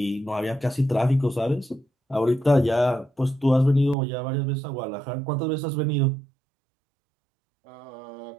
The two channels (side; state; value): left; drops out; at 4.0 s